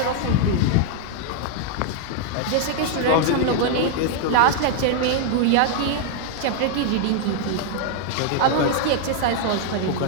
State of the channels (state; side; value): different; both; correlation 0.00